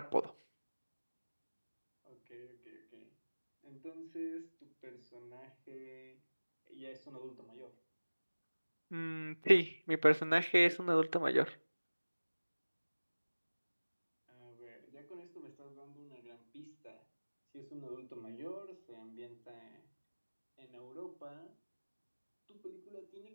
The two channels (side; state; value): both; inverted; correlation -1.00